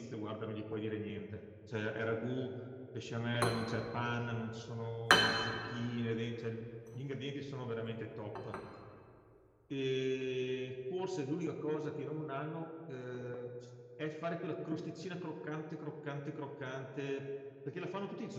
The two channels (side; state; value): both; identical; correlation 1.00